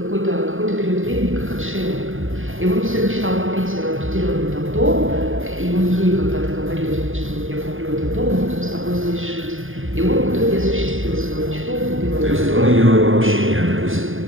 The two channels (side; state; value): left; late; 0.59 ms